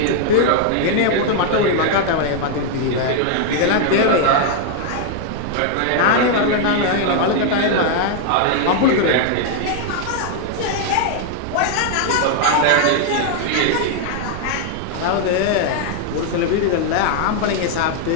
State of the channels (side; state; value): both; different; correlation 0.00